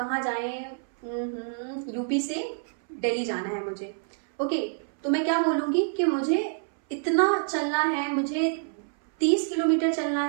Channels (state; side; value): silent; left; 60 dB below the other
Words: जाएं, यूपी से दिल्ली जाना है मुझे. ओके, तो मैं क्या बोलूँगी कि मुझे इतना चलना है, मुझे 30 किलोमीटर चलना